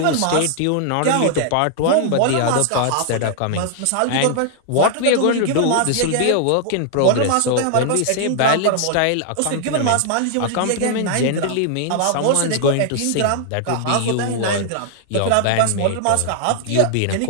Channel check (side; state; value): both; different; correlation 0.00